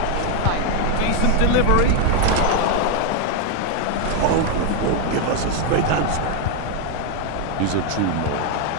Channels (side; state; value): both; different; correlation 0.01